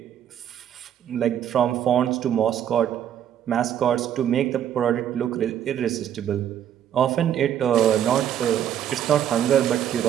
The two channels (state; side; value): quieter; left; 10.0 dB